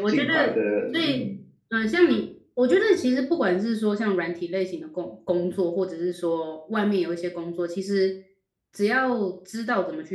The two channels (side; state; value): both; identical; correlation 1.00